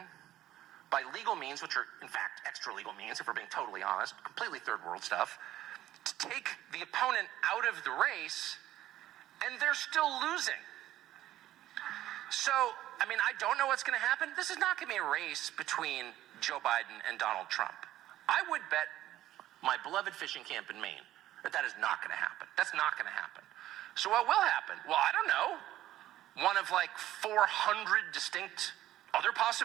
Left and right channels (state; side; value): quieter; left; 13.8 dB